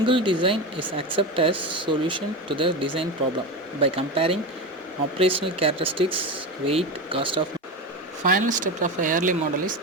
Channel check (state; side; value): normal; both; correlation 0.20